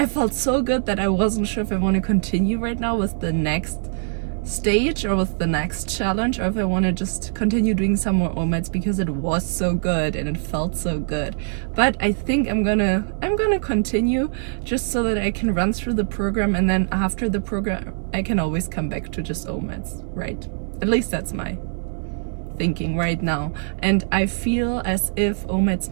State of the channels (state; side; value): silent; left; 58 dB below the other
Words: felt so good that I wasn't sure if I want to continue right now with the next stage or with the next challenge, or if I want to just continue doing some more omats because it was so good and it felt so good. But I think I'm gonna continue just so that I can run through the program, and then after the program I can always come back to just omats, right? At least that's my thinking right now. And I feel as if omats